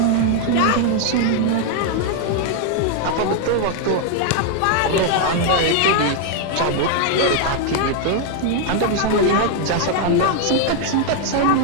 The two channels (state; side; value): different; both; correlation 0.00